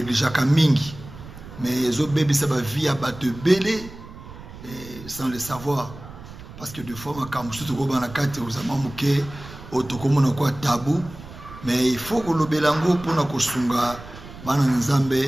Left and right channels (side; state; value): right; noise; rumble, 16 dB below the sound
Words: mingi, mais les autres bébés ça va via bateau belé sans le savoir, parce que des fois quand je suis au banakate aux amamuke otokomona kwa tabou, mais il faut que le belango pour na kosunga bana